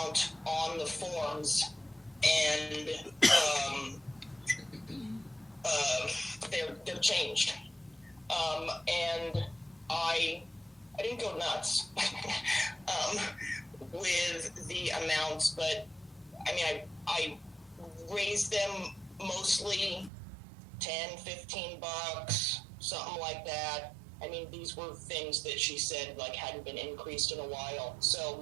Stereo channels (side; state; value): left; drops out; at 20.1 s